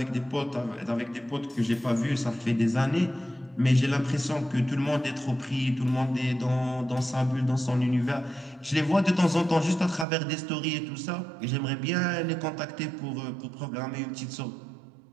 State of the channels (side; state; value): left; drops out; at 10.1 s